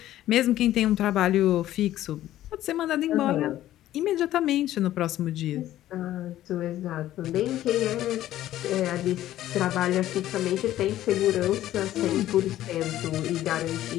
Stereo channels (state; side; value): quieter; right; 13.5 dB